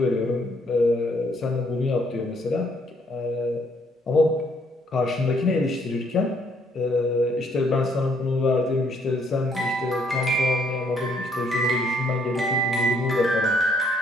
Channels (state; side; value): normal; both; correlation 0.67